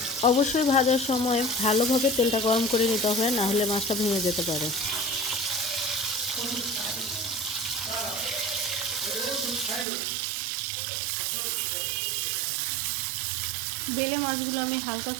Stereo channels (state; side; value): drops out; left; at 9.9 s